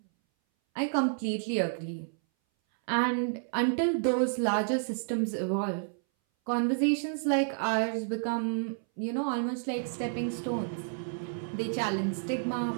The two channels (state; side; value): silent; left; 58 dB below the other